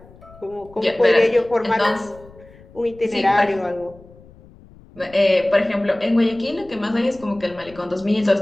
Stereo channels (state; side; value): noise; left; rumble, 23 dB below the sound